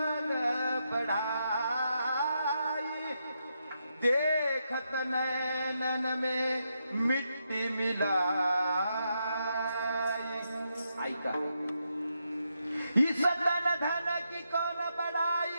बढ़ाई, देखत नैनन में मिट्टी मिलाई. ऐका, इस धन धन की कौन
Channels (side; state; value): both; inverted; correlation -0.82